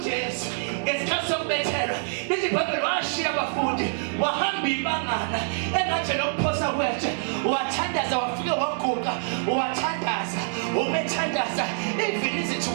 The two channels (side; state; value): left; silent; digital silence